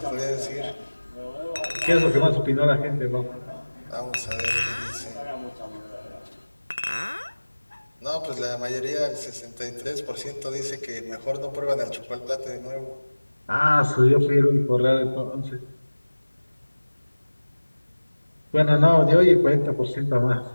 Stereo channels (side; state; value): both; inverted; correlation -1.00